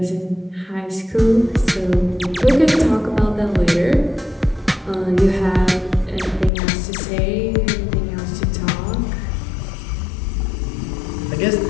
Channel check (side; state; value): right; drops out; at 6.5 s